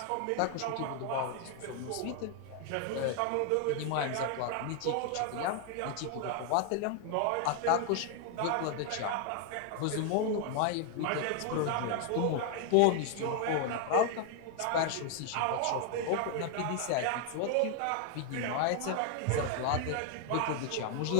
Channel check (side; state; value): both; different; correlation 0.00